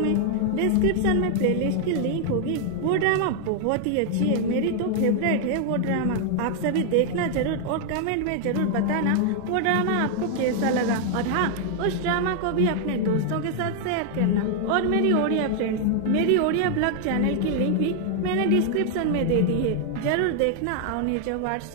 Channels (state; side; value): different; both; correlation 0.00